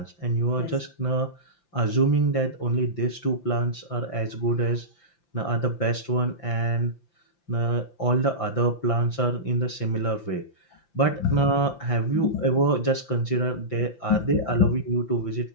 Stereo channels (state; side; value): late; right; 5.9 ms